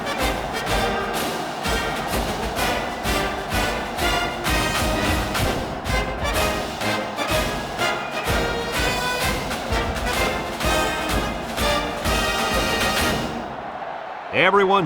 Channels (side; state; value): both; identical; correlation 1.00